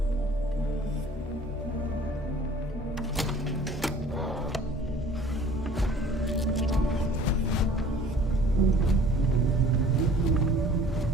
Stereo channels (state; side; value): normal; both; correlation 0.50